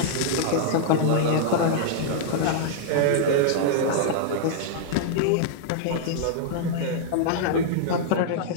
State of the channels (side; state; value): both; different; correlation -0.02